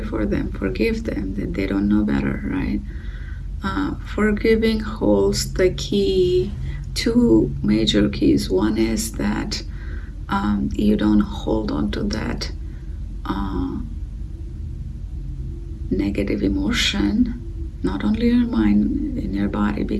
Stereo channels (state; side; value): identical; both; correlation 1.00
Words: them, forgive them, that they don't know better, right? Forgiving holds the key, two major keys. One is that you don't hold on to that negative emotion, not only in your mind, in your body,